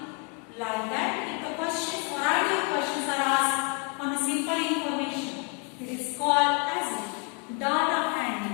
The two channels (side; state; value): right; quieter; 33.1 dB